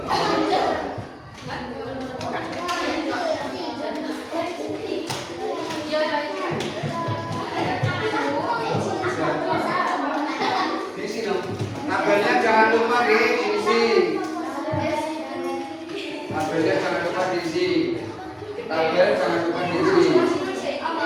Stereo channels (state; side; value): identical; both; correlation 1.00